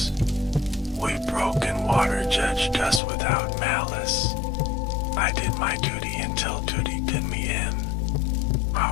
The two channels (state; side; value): drops out; right; at 3.0 s